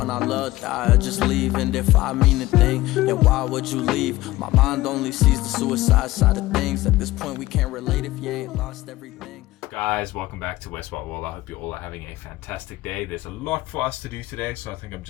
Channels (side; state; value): right; quieter; 17.5 dB